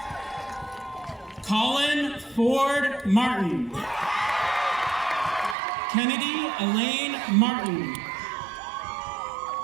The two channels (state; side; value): drops out; left; at 5.6 s